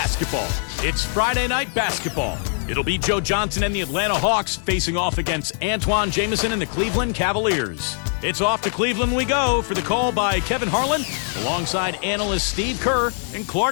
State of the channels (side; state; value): right; silent; 64 dB below the other